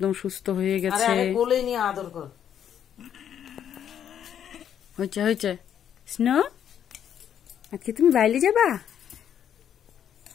সুস্থ হয়ে গেছে। কোলে নিয়ে আদর কর। হয়েছে হয়েছে। স্নো, আজকে তুমি বাইরে যাবা?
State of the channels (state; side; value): quieter; right; 9.3 dB